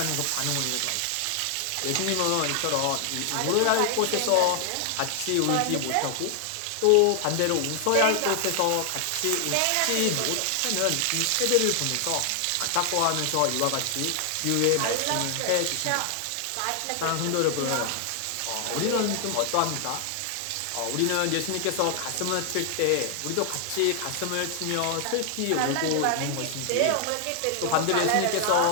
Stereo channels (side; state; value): both; different; correlation 0.00